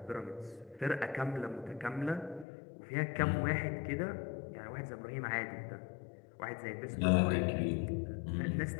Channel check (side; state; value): right; drops out; at 2.5 s